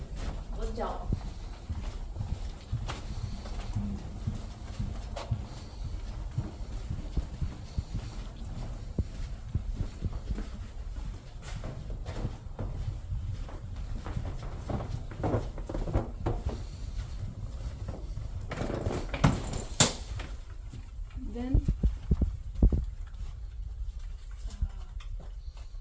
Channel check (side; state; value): both; identical; correlation 1.00